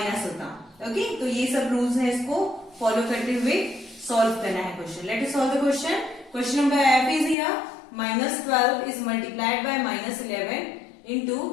होता। ओके, तो ये सब रूल्स है, इसको फॉलो करते हुए सॉल्व करना है question. Let us solve the question. Question number F is here -12 is multiplied by -11 into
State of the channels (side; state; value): right; drops out; at 7.4 s